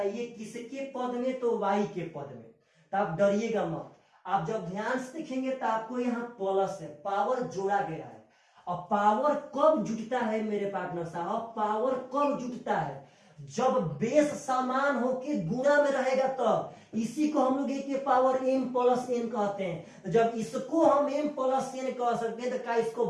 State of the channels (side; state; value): both; identical; correlation 1.00